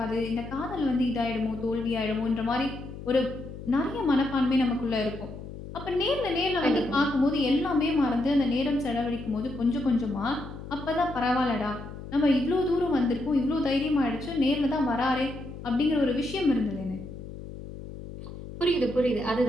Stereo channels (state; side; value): noise; left; hum, 12 dB below the sound